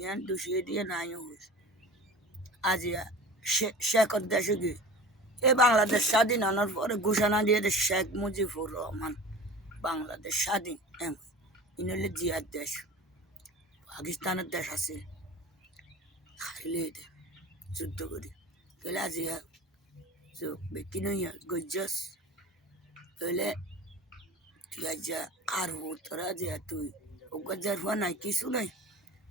দোষিয়ে দিয়ে নাই হয়েছে আজ শেখর দেশে গিয়ে এ বাংলাদেশ স্বাধীন হওয়ার পরে ঘোষণা দিয়ে শেখ মুজিবুর রহমান বাংলাদেশ স্বাধীন এমন ইনলে জিয়ার দেশ পাকিস্তানের দেশ আছে খাইলে যুদ্ধ করি তাহলে আজ বেকি নইয়া গজ্জস তাহলে তুই আজ আর তোরা যে তুই গজ্জার হওয়া নাই কিছু নাই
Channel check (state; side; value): normal; both; correlation 0.37